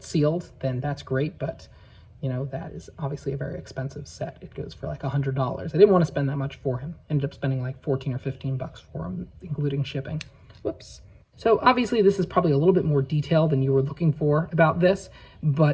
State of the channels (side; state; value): both; identical; correlation 1.00